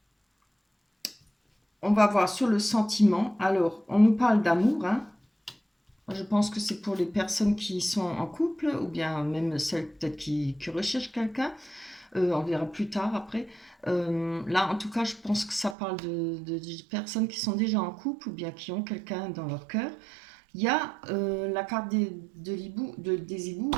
On va voir sur le sentiment. Alors, on nous parle d'amour. Hein. Je pense que c'est pour les personnes qui sont en couple ou bien même celles peut-être qui recherchent quelqu'un. On verra plus tard après. Là, en tout cas, je pense que ça parle de personnes qui sont déjà en couple ou bien qui ont quelqu'un dans leur cœur. Il y a la carte des hiboux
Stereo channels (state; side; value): drops out; left; at 15.8 s